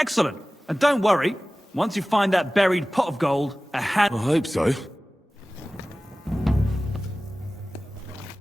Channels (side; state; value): both; normal; correlation 0.97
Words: And don't worry, once you find that buried pot of gold, a hand... I hope so.